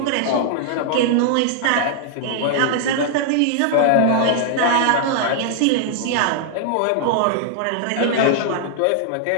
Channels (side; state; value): both; different; correlation -0.01